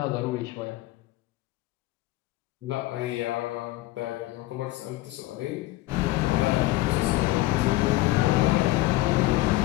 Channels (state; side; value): quieter; right; 18.4 dB